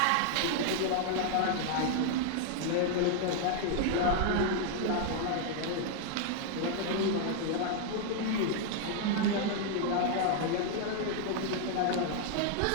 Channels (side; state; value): both; different; correlation 0.00